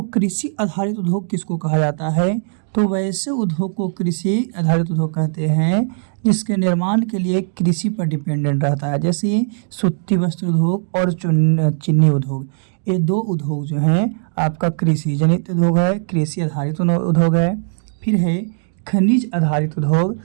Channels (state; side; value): silent; left; 66 dB below the other